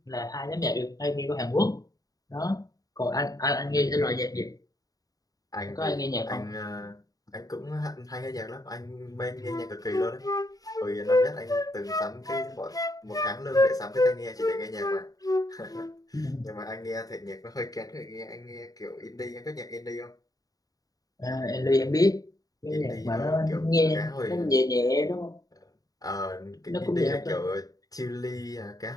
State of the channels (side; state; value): right; late; 0.18 ms